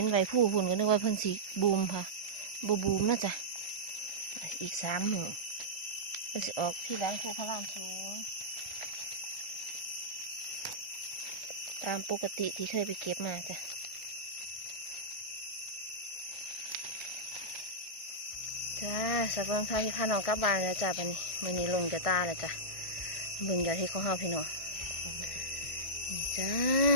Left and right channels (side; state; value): right; late; 1.6 ms